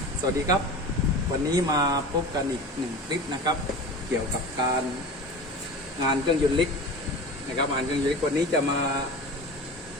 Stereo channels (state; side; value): normal; both; correlation 0.33